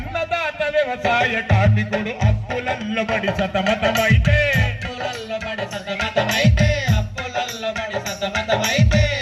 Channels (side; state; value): both; identical; correlation 1.00